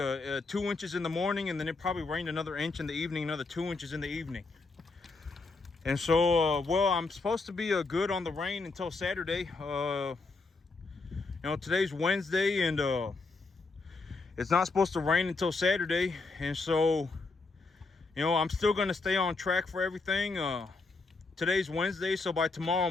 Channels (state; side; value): quieter; right; 3.8 dB